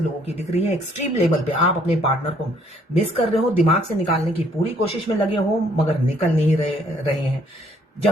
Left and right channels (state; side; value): normal; both; correlation 0.64